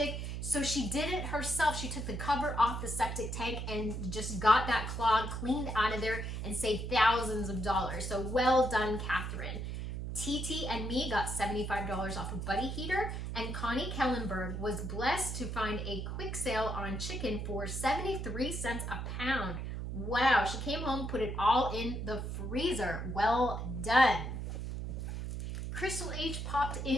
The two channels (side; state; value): right; noise; hum, 4 dB below the sound